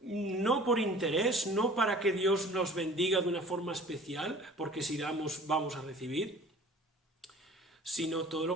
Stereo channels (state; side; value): normal; both; correlation 0.47